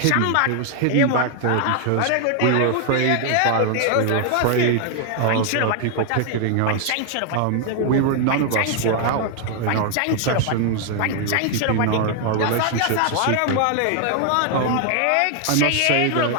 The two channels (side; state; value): both; different; correlation 0.00